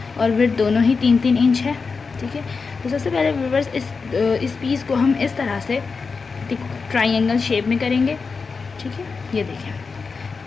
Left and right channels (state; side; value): quieter; right; 4.8 dB